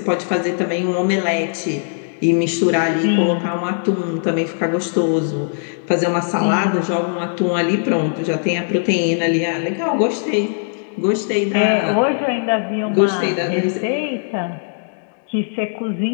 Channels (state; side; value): silent; right; digital silence